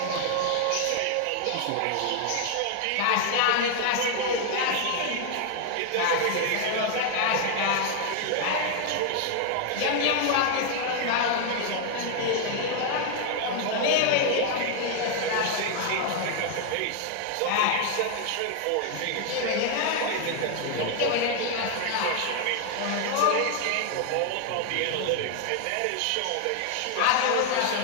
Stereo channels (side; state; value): both; different; correlation 0.00